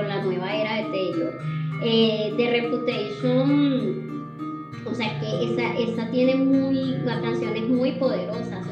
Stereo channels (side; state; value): both; identical; correlation 1.00